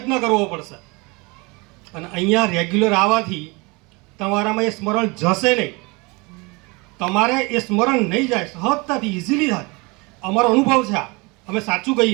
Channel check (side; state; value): left; quieter; 26.9 dB